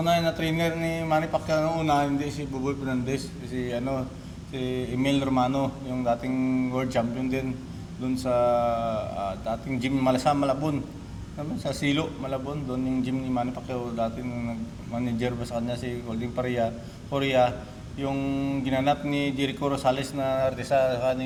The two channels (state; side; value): identical; both; correlation 1.00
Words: na trainer ni Manny Pacquiao noong una, hindi si Buboy Fernandez, si Emil Romano, yung dating world champion din doon sa dating gym Malabon. Sa Silo, Malabon, doon yung gym ni Manny Pacquiao dati nung nag-manager ba sa kanya si Golding Korea, yung ginanap ni Jericho Rosales na artista